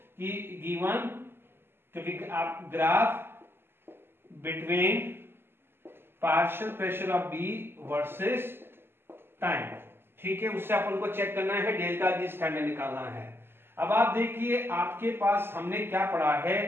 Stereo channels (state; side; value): late; left; 0.11 ms